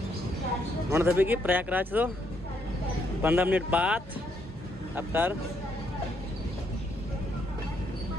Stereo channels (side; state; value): both; normal; correlation 0.73